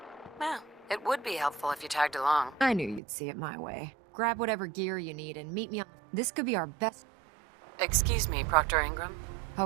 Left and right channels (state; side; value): drops out; left; at 3.0 s